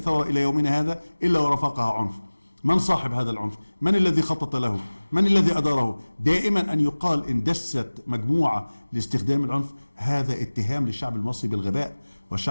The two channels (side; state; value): both; inverted; correlation -1.00